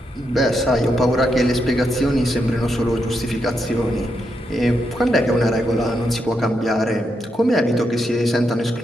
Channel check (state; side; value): normal; both; correlation 0.82